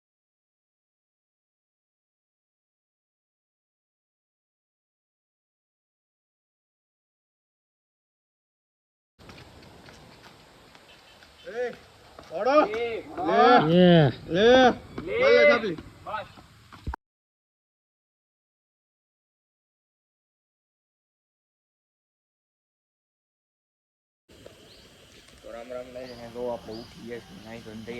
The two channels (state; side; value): identical; both; correlation 1.00